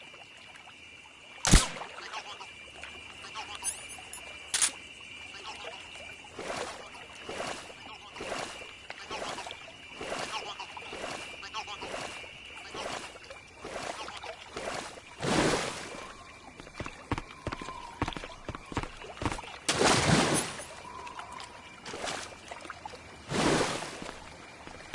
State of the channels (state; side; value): identical; both; correlation 1.00